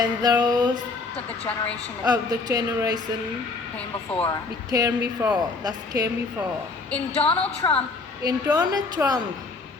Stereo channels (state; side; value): quieter; right; 3.9 dB